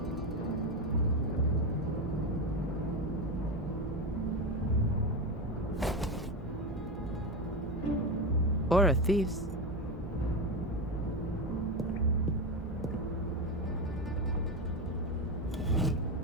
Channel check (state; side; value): normal; both; correlation 0.15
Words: Or a thief's.